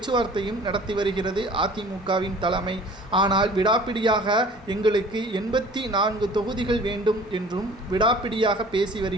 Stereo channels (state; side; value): normal; both; correlation 0.47